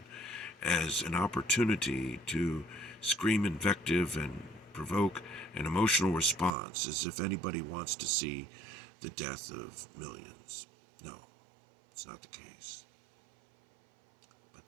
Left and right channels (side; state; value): left; drops out; at 6.5 s